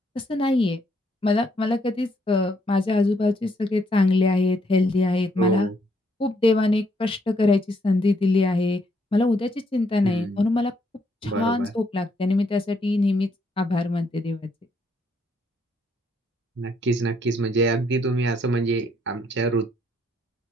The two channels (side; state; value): both; normal; correlation 0.72